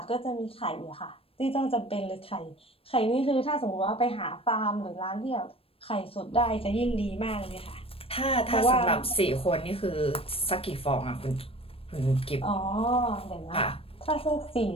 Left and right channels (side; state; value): right; late; 0.28 ms